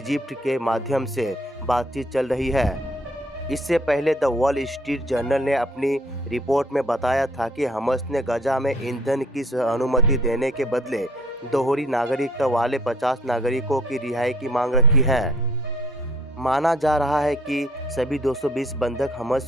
के माध्यम से बातचीत चल रही है। इससे पहले द वॉल स्ट्रीट जर्नल ने अपनी रिपोर्ट में बताया था कि हमस ने गजा में ईंधन की अनुमति देने के बदले दोहरी नागरिकता वाले 50 नागरिकों की रिहाई की मांग रखी है। माना जा रहा है कि सभी 220 बंधक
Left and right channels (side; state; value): both; normal; correlation 0.59